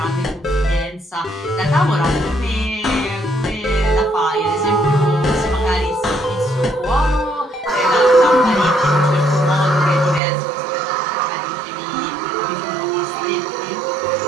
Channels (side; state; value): left; drops out; at 10.2 s